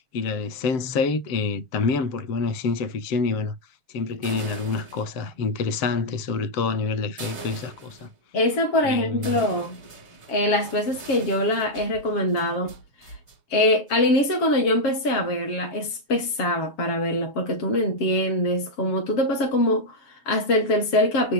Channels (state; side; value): late; right; 7.4 ms